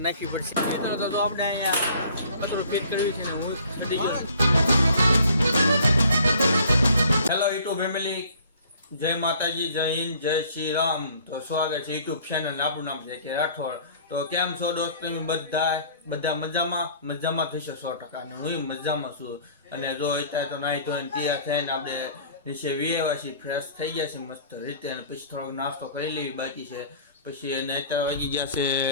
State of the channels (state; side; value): inverted; both; correlation -0.52